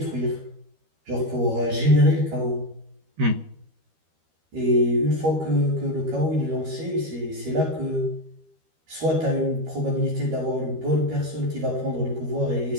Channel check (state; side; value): late; left; 13 ms